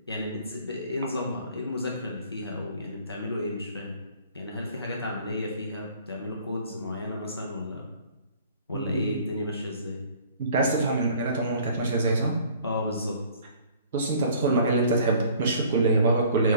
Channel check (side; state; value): both; inverted; correlation -0.54